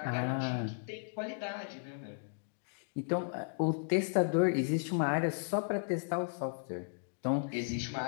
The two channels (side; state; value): right; silent; digital silence